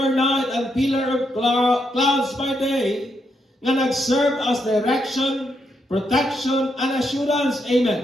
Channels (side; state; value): both; normal; correlation 0.80